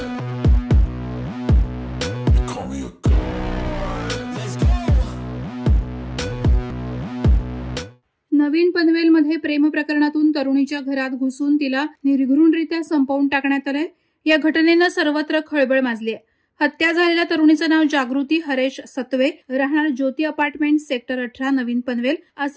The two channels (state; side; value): identical; both; correlation 1.00